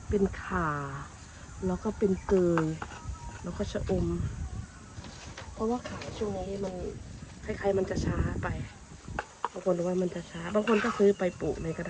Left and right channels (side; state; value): both; identical; correlation 1.00